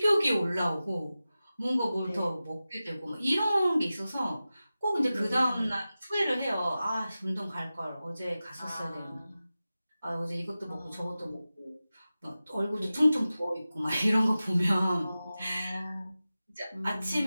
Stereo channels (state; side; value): inverted; both; correlation -0.95